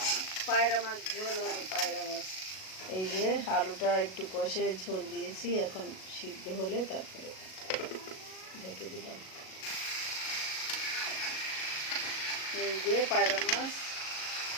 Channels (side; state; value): right; late; 37 ms